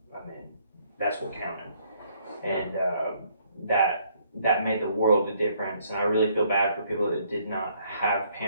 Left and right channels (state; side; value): inverted; both; correlation -0.66